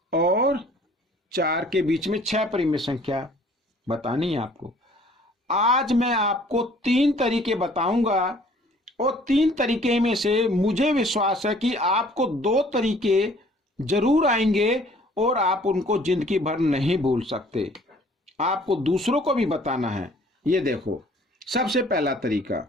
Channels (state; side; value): normal; both; correlation 0.56